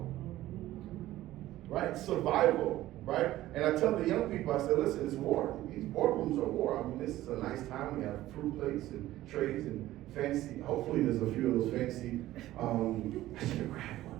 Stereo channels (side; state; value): left; quieter; 15.2 dB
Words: Right? Survival, right? And I tell the young people, I said, listen, it's war. These boardrooms are war. I mean, this is a nice time. We have fruit plates and trays and fancy, hopefully there's a few of those fancy, I should have grabbed one.